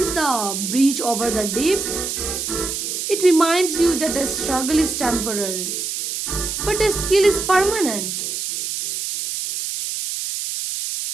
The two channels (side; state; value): right; noise; hiss, 3 dB below the sound